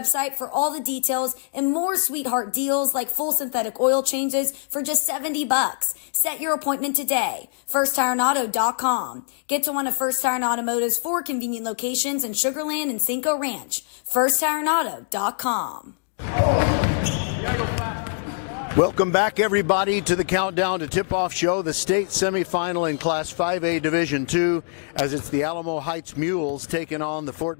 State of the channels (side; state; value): right; silent; digital silence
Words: for all the details and more sweetheart deals like full synthetic oil changes for just $70. Set your appointment today. FirstTireAuto.com. Get to one of First Tire Automotive's 4 convenient locations in Sugar Land and Cinco Ranch. FirstTireAuto.com. Welcome back, everybody, to the Countdown to Tip-Off Show, the state semifinal in Class 5A Division II, as it's the Alamo Heights Mules taking on the Fort